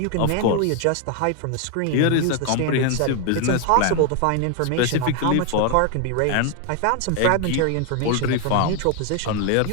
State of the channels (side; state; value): both; different; correlation 0.00